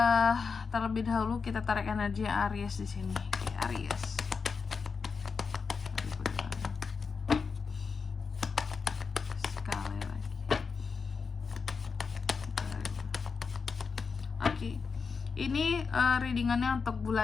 Terlebih dahulu kita tarik energi Aries di sini. Oke, Aries. Sekali lagi. Oke. Ini readingannya untuk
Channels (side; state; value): right; quieter; 5.3 dB